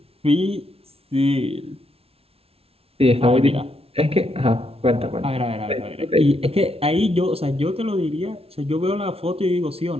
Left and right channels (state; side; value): late; left; 0.28 ms